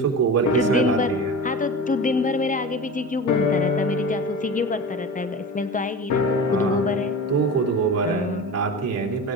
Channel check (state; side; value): normal; both; correlation 0.31